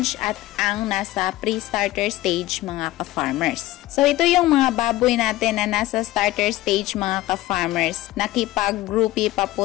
at ang nasa pre-starter stage mga ka-farmers. So ito yung mga baboy natin na nasa starter stage mga ka-farmers. Nakipag-groupie pa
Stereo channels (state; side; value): quieter; right; 16.8 dB